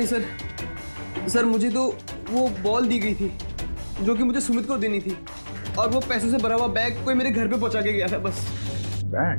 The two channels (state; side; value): inverted; both; correlation -1.00